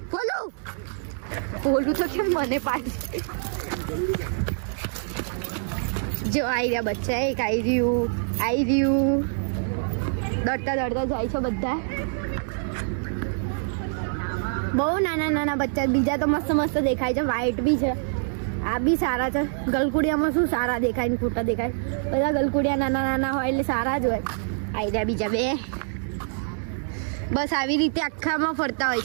ભોલું તો કેમ મને પાડી. જો આવી રહ્યા બચ્ચા, એક આવી રહ્યું દોડતા જાય છે બધા. બહુ નાના બચ્ચા, બીજા તો મસ્ત દેખાય છે, વ્હાઈટ બી છે. આ બી સારા છે. ગલકુડિયામાં શું સારા દેખાય ને ખોટા દેખાય? બધા ગલકુડિયા નાના હોય એટલે સારા જ હોય. આવી રહ્યા બીજા બે. બસ આવી રીતે આખામાં ફરતા હોય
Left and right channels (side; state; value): left; silent; digital silence